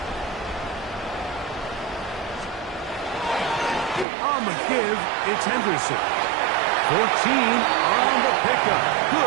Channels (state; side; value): drops out; left; at 4.0 s